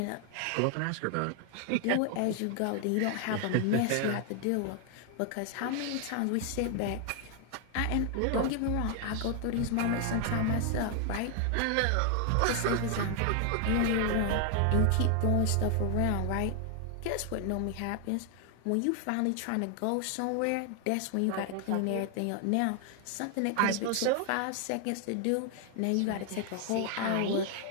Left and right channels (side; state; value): both; different; correlation 0.00